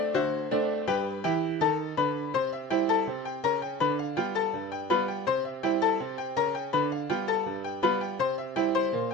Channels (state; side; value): normal; both; correlation 0.40